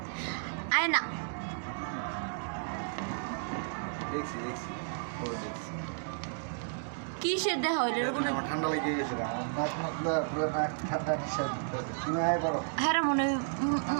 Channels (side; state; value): left; silent; digital silence